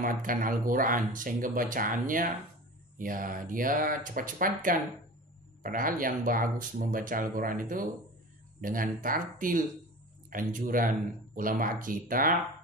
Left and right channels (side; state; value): both; normal; correlation 0.35